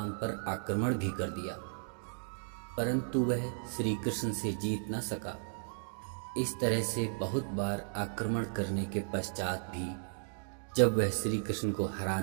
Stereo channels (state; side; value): silent; left; 54 dB below the other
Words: पर आक्रमण भी कर दिया, परंतु वह श्री कृष्ण से जीत न सका। इस तरह से बहुत बार आक्रमण करने के पश्चात भी जब वह श्री कृष्ण को हरा